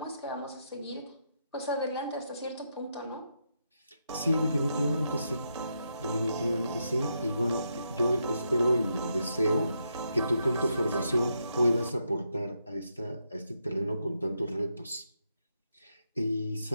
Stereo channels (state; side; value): inverted; both; correlation -0.81